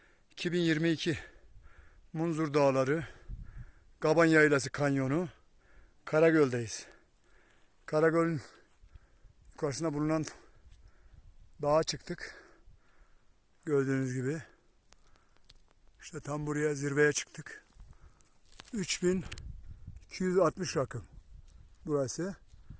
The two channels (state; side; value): identical; both; correlation 1.00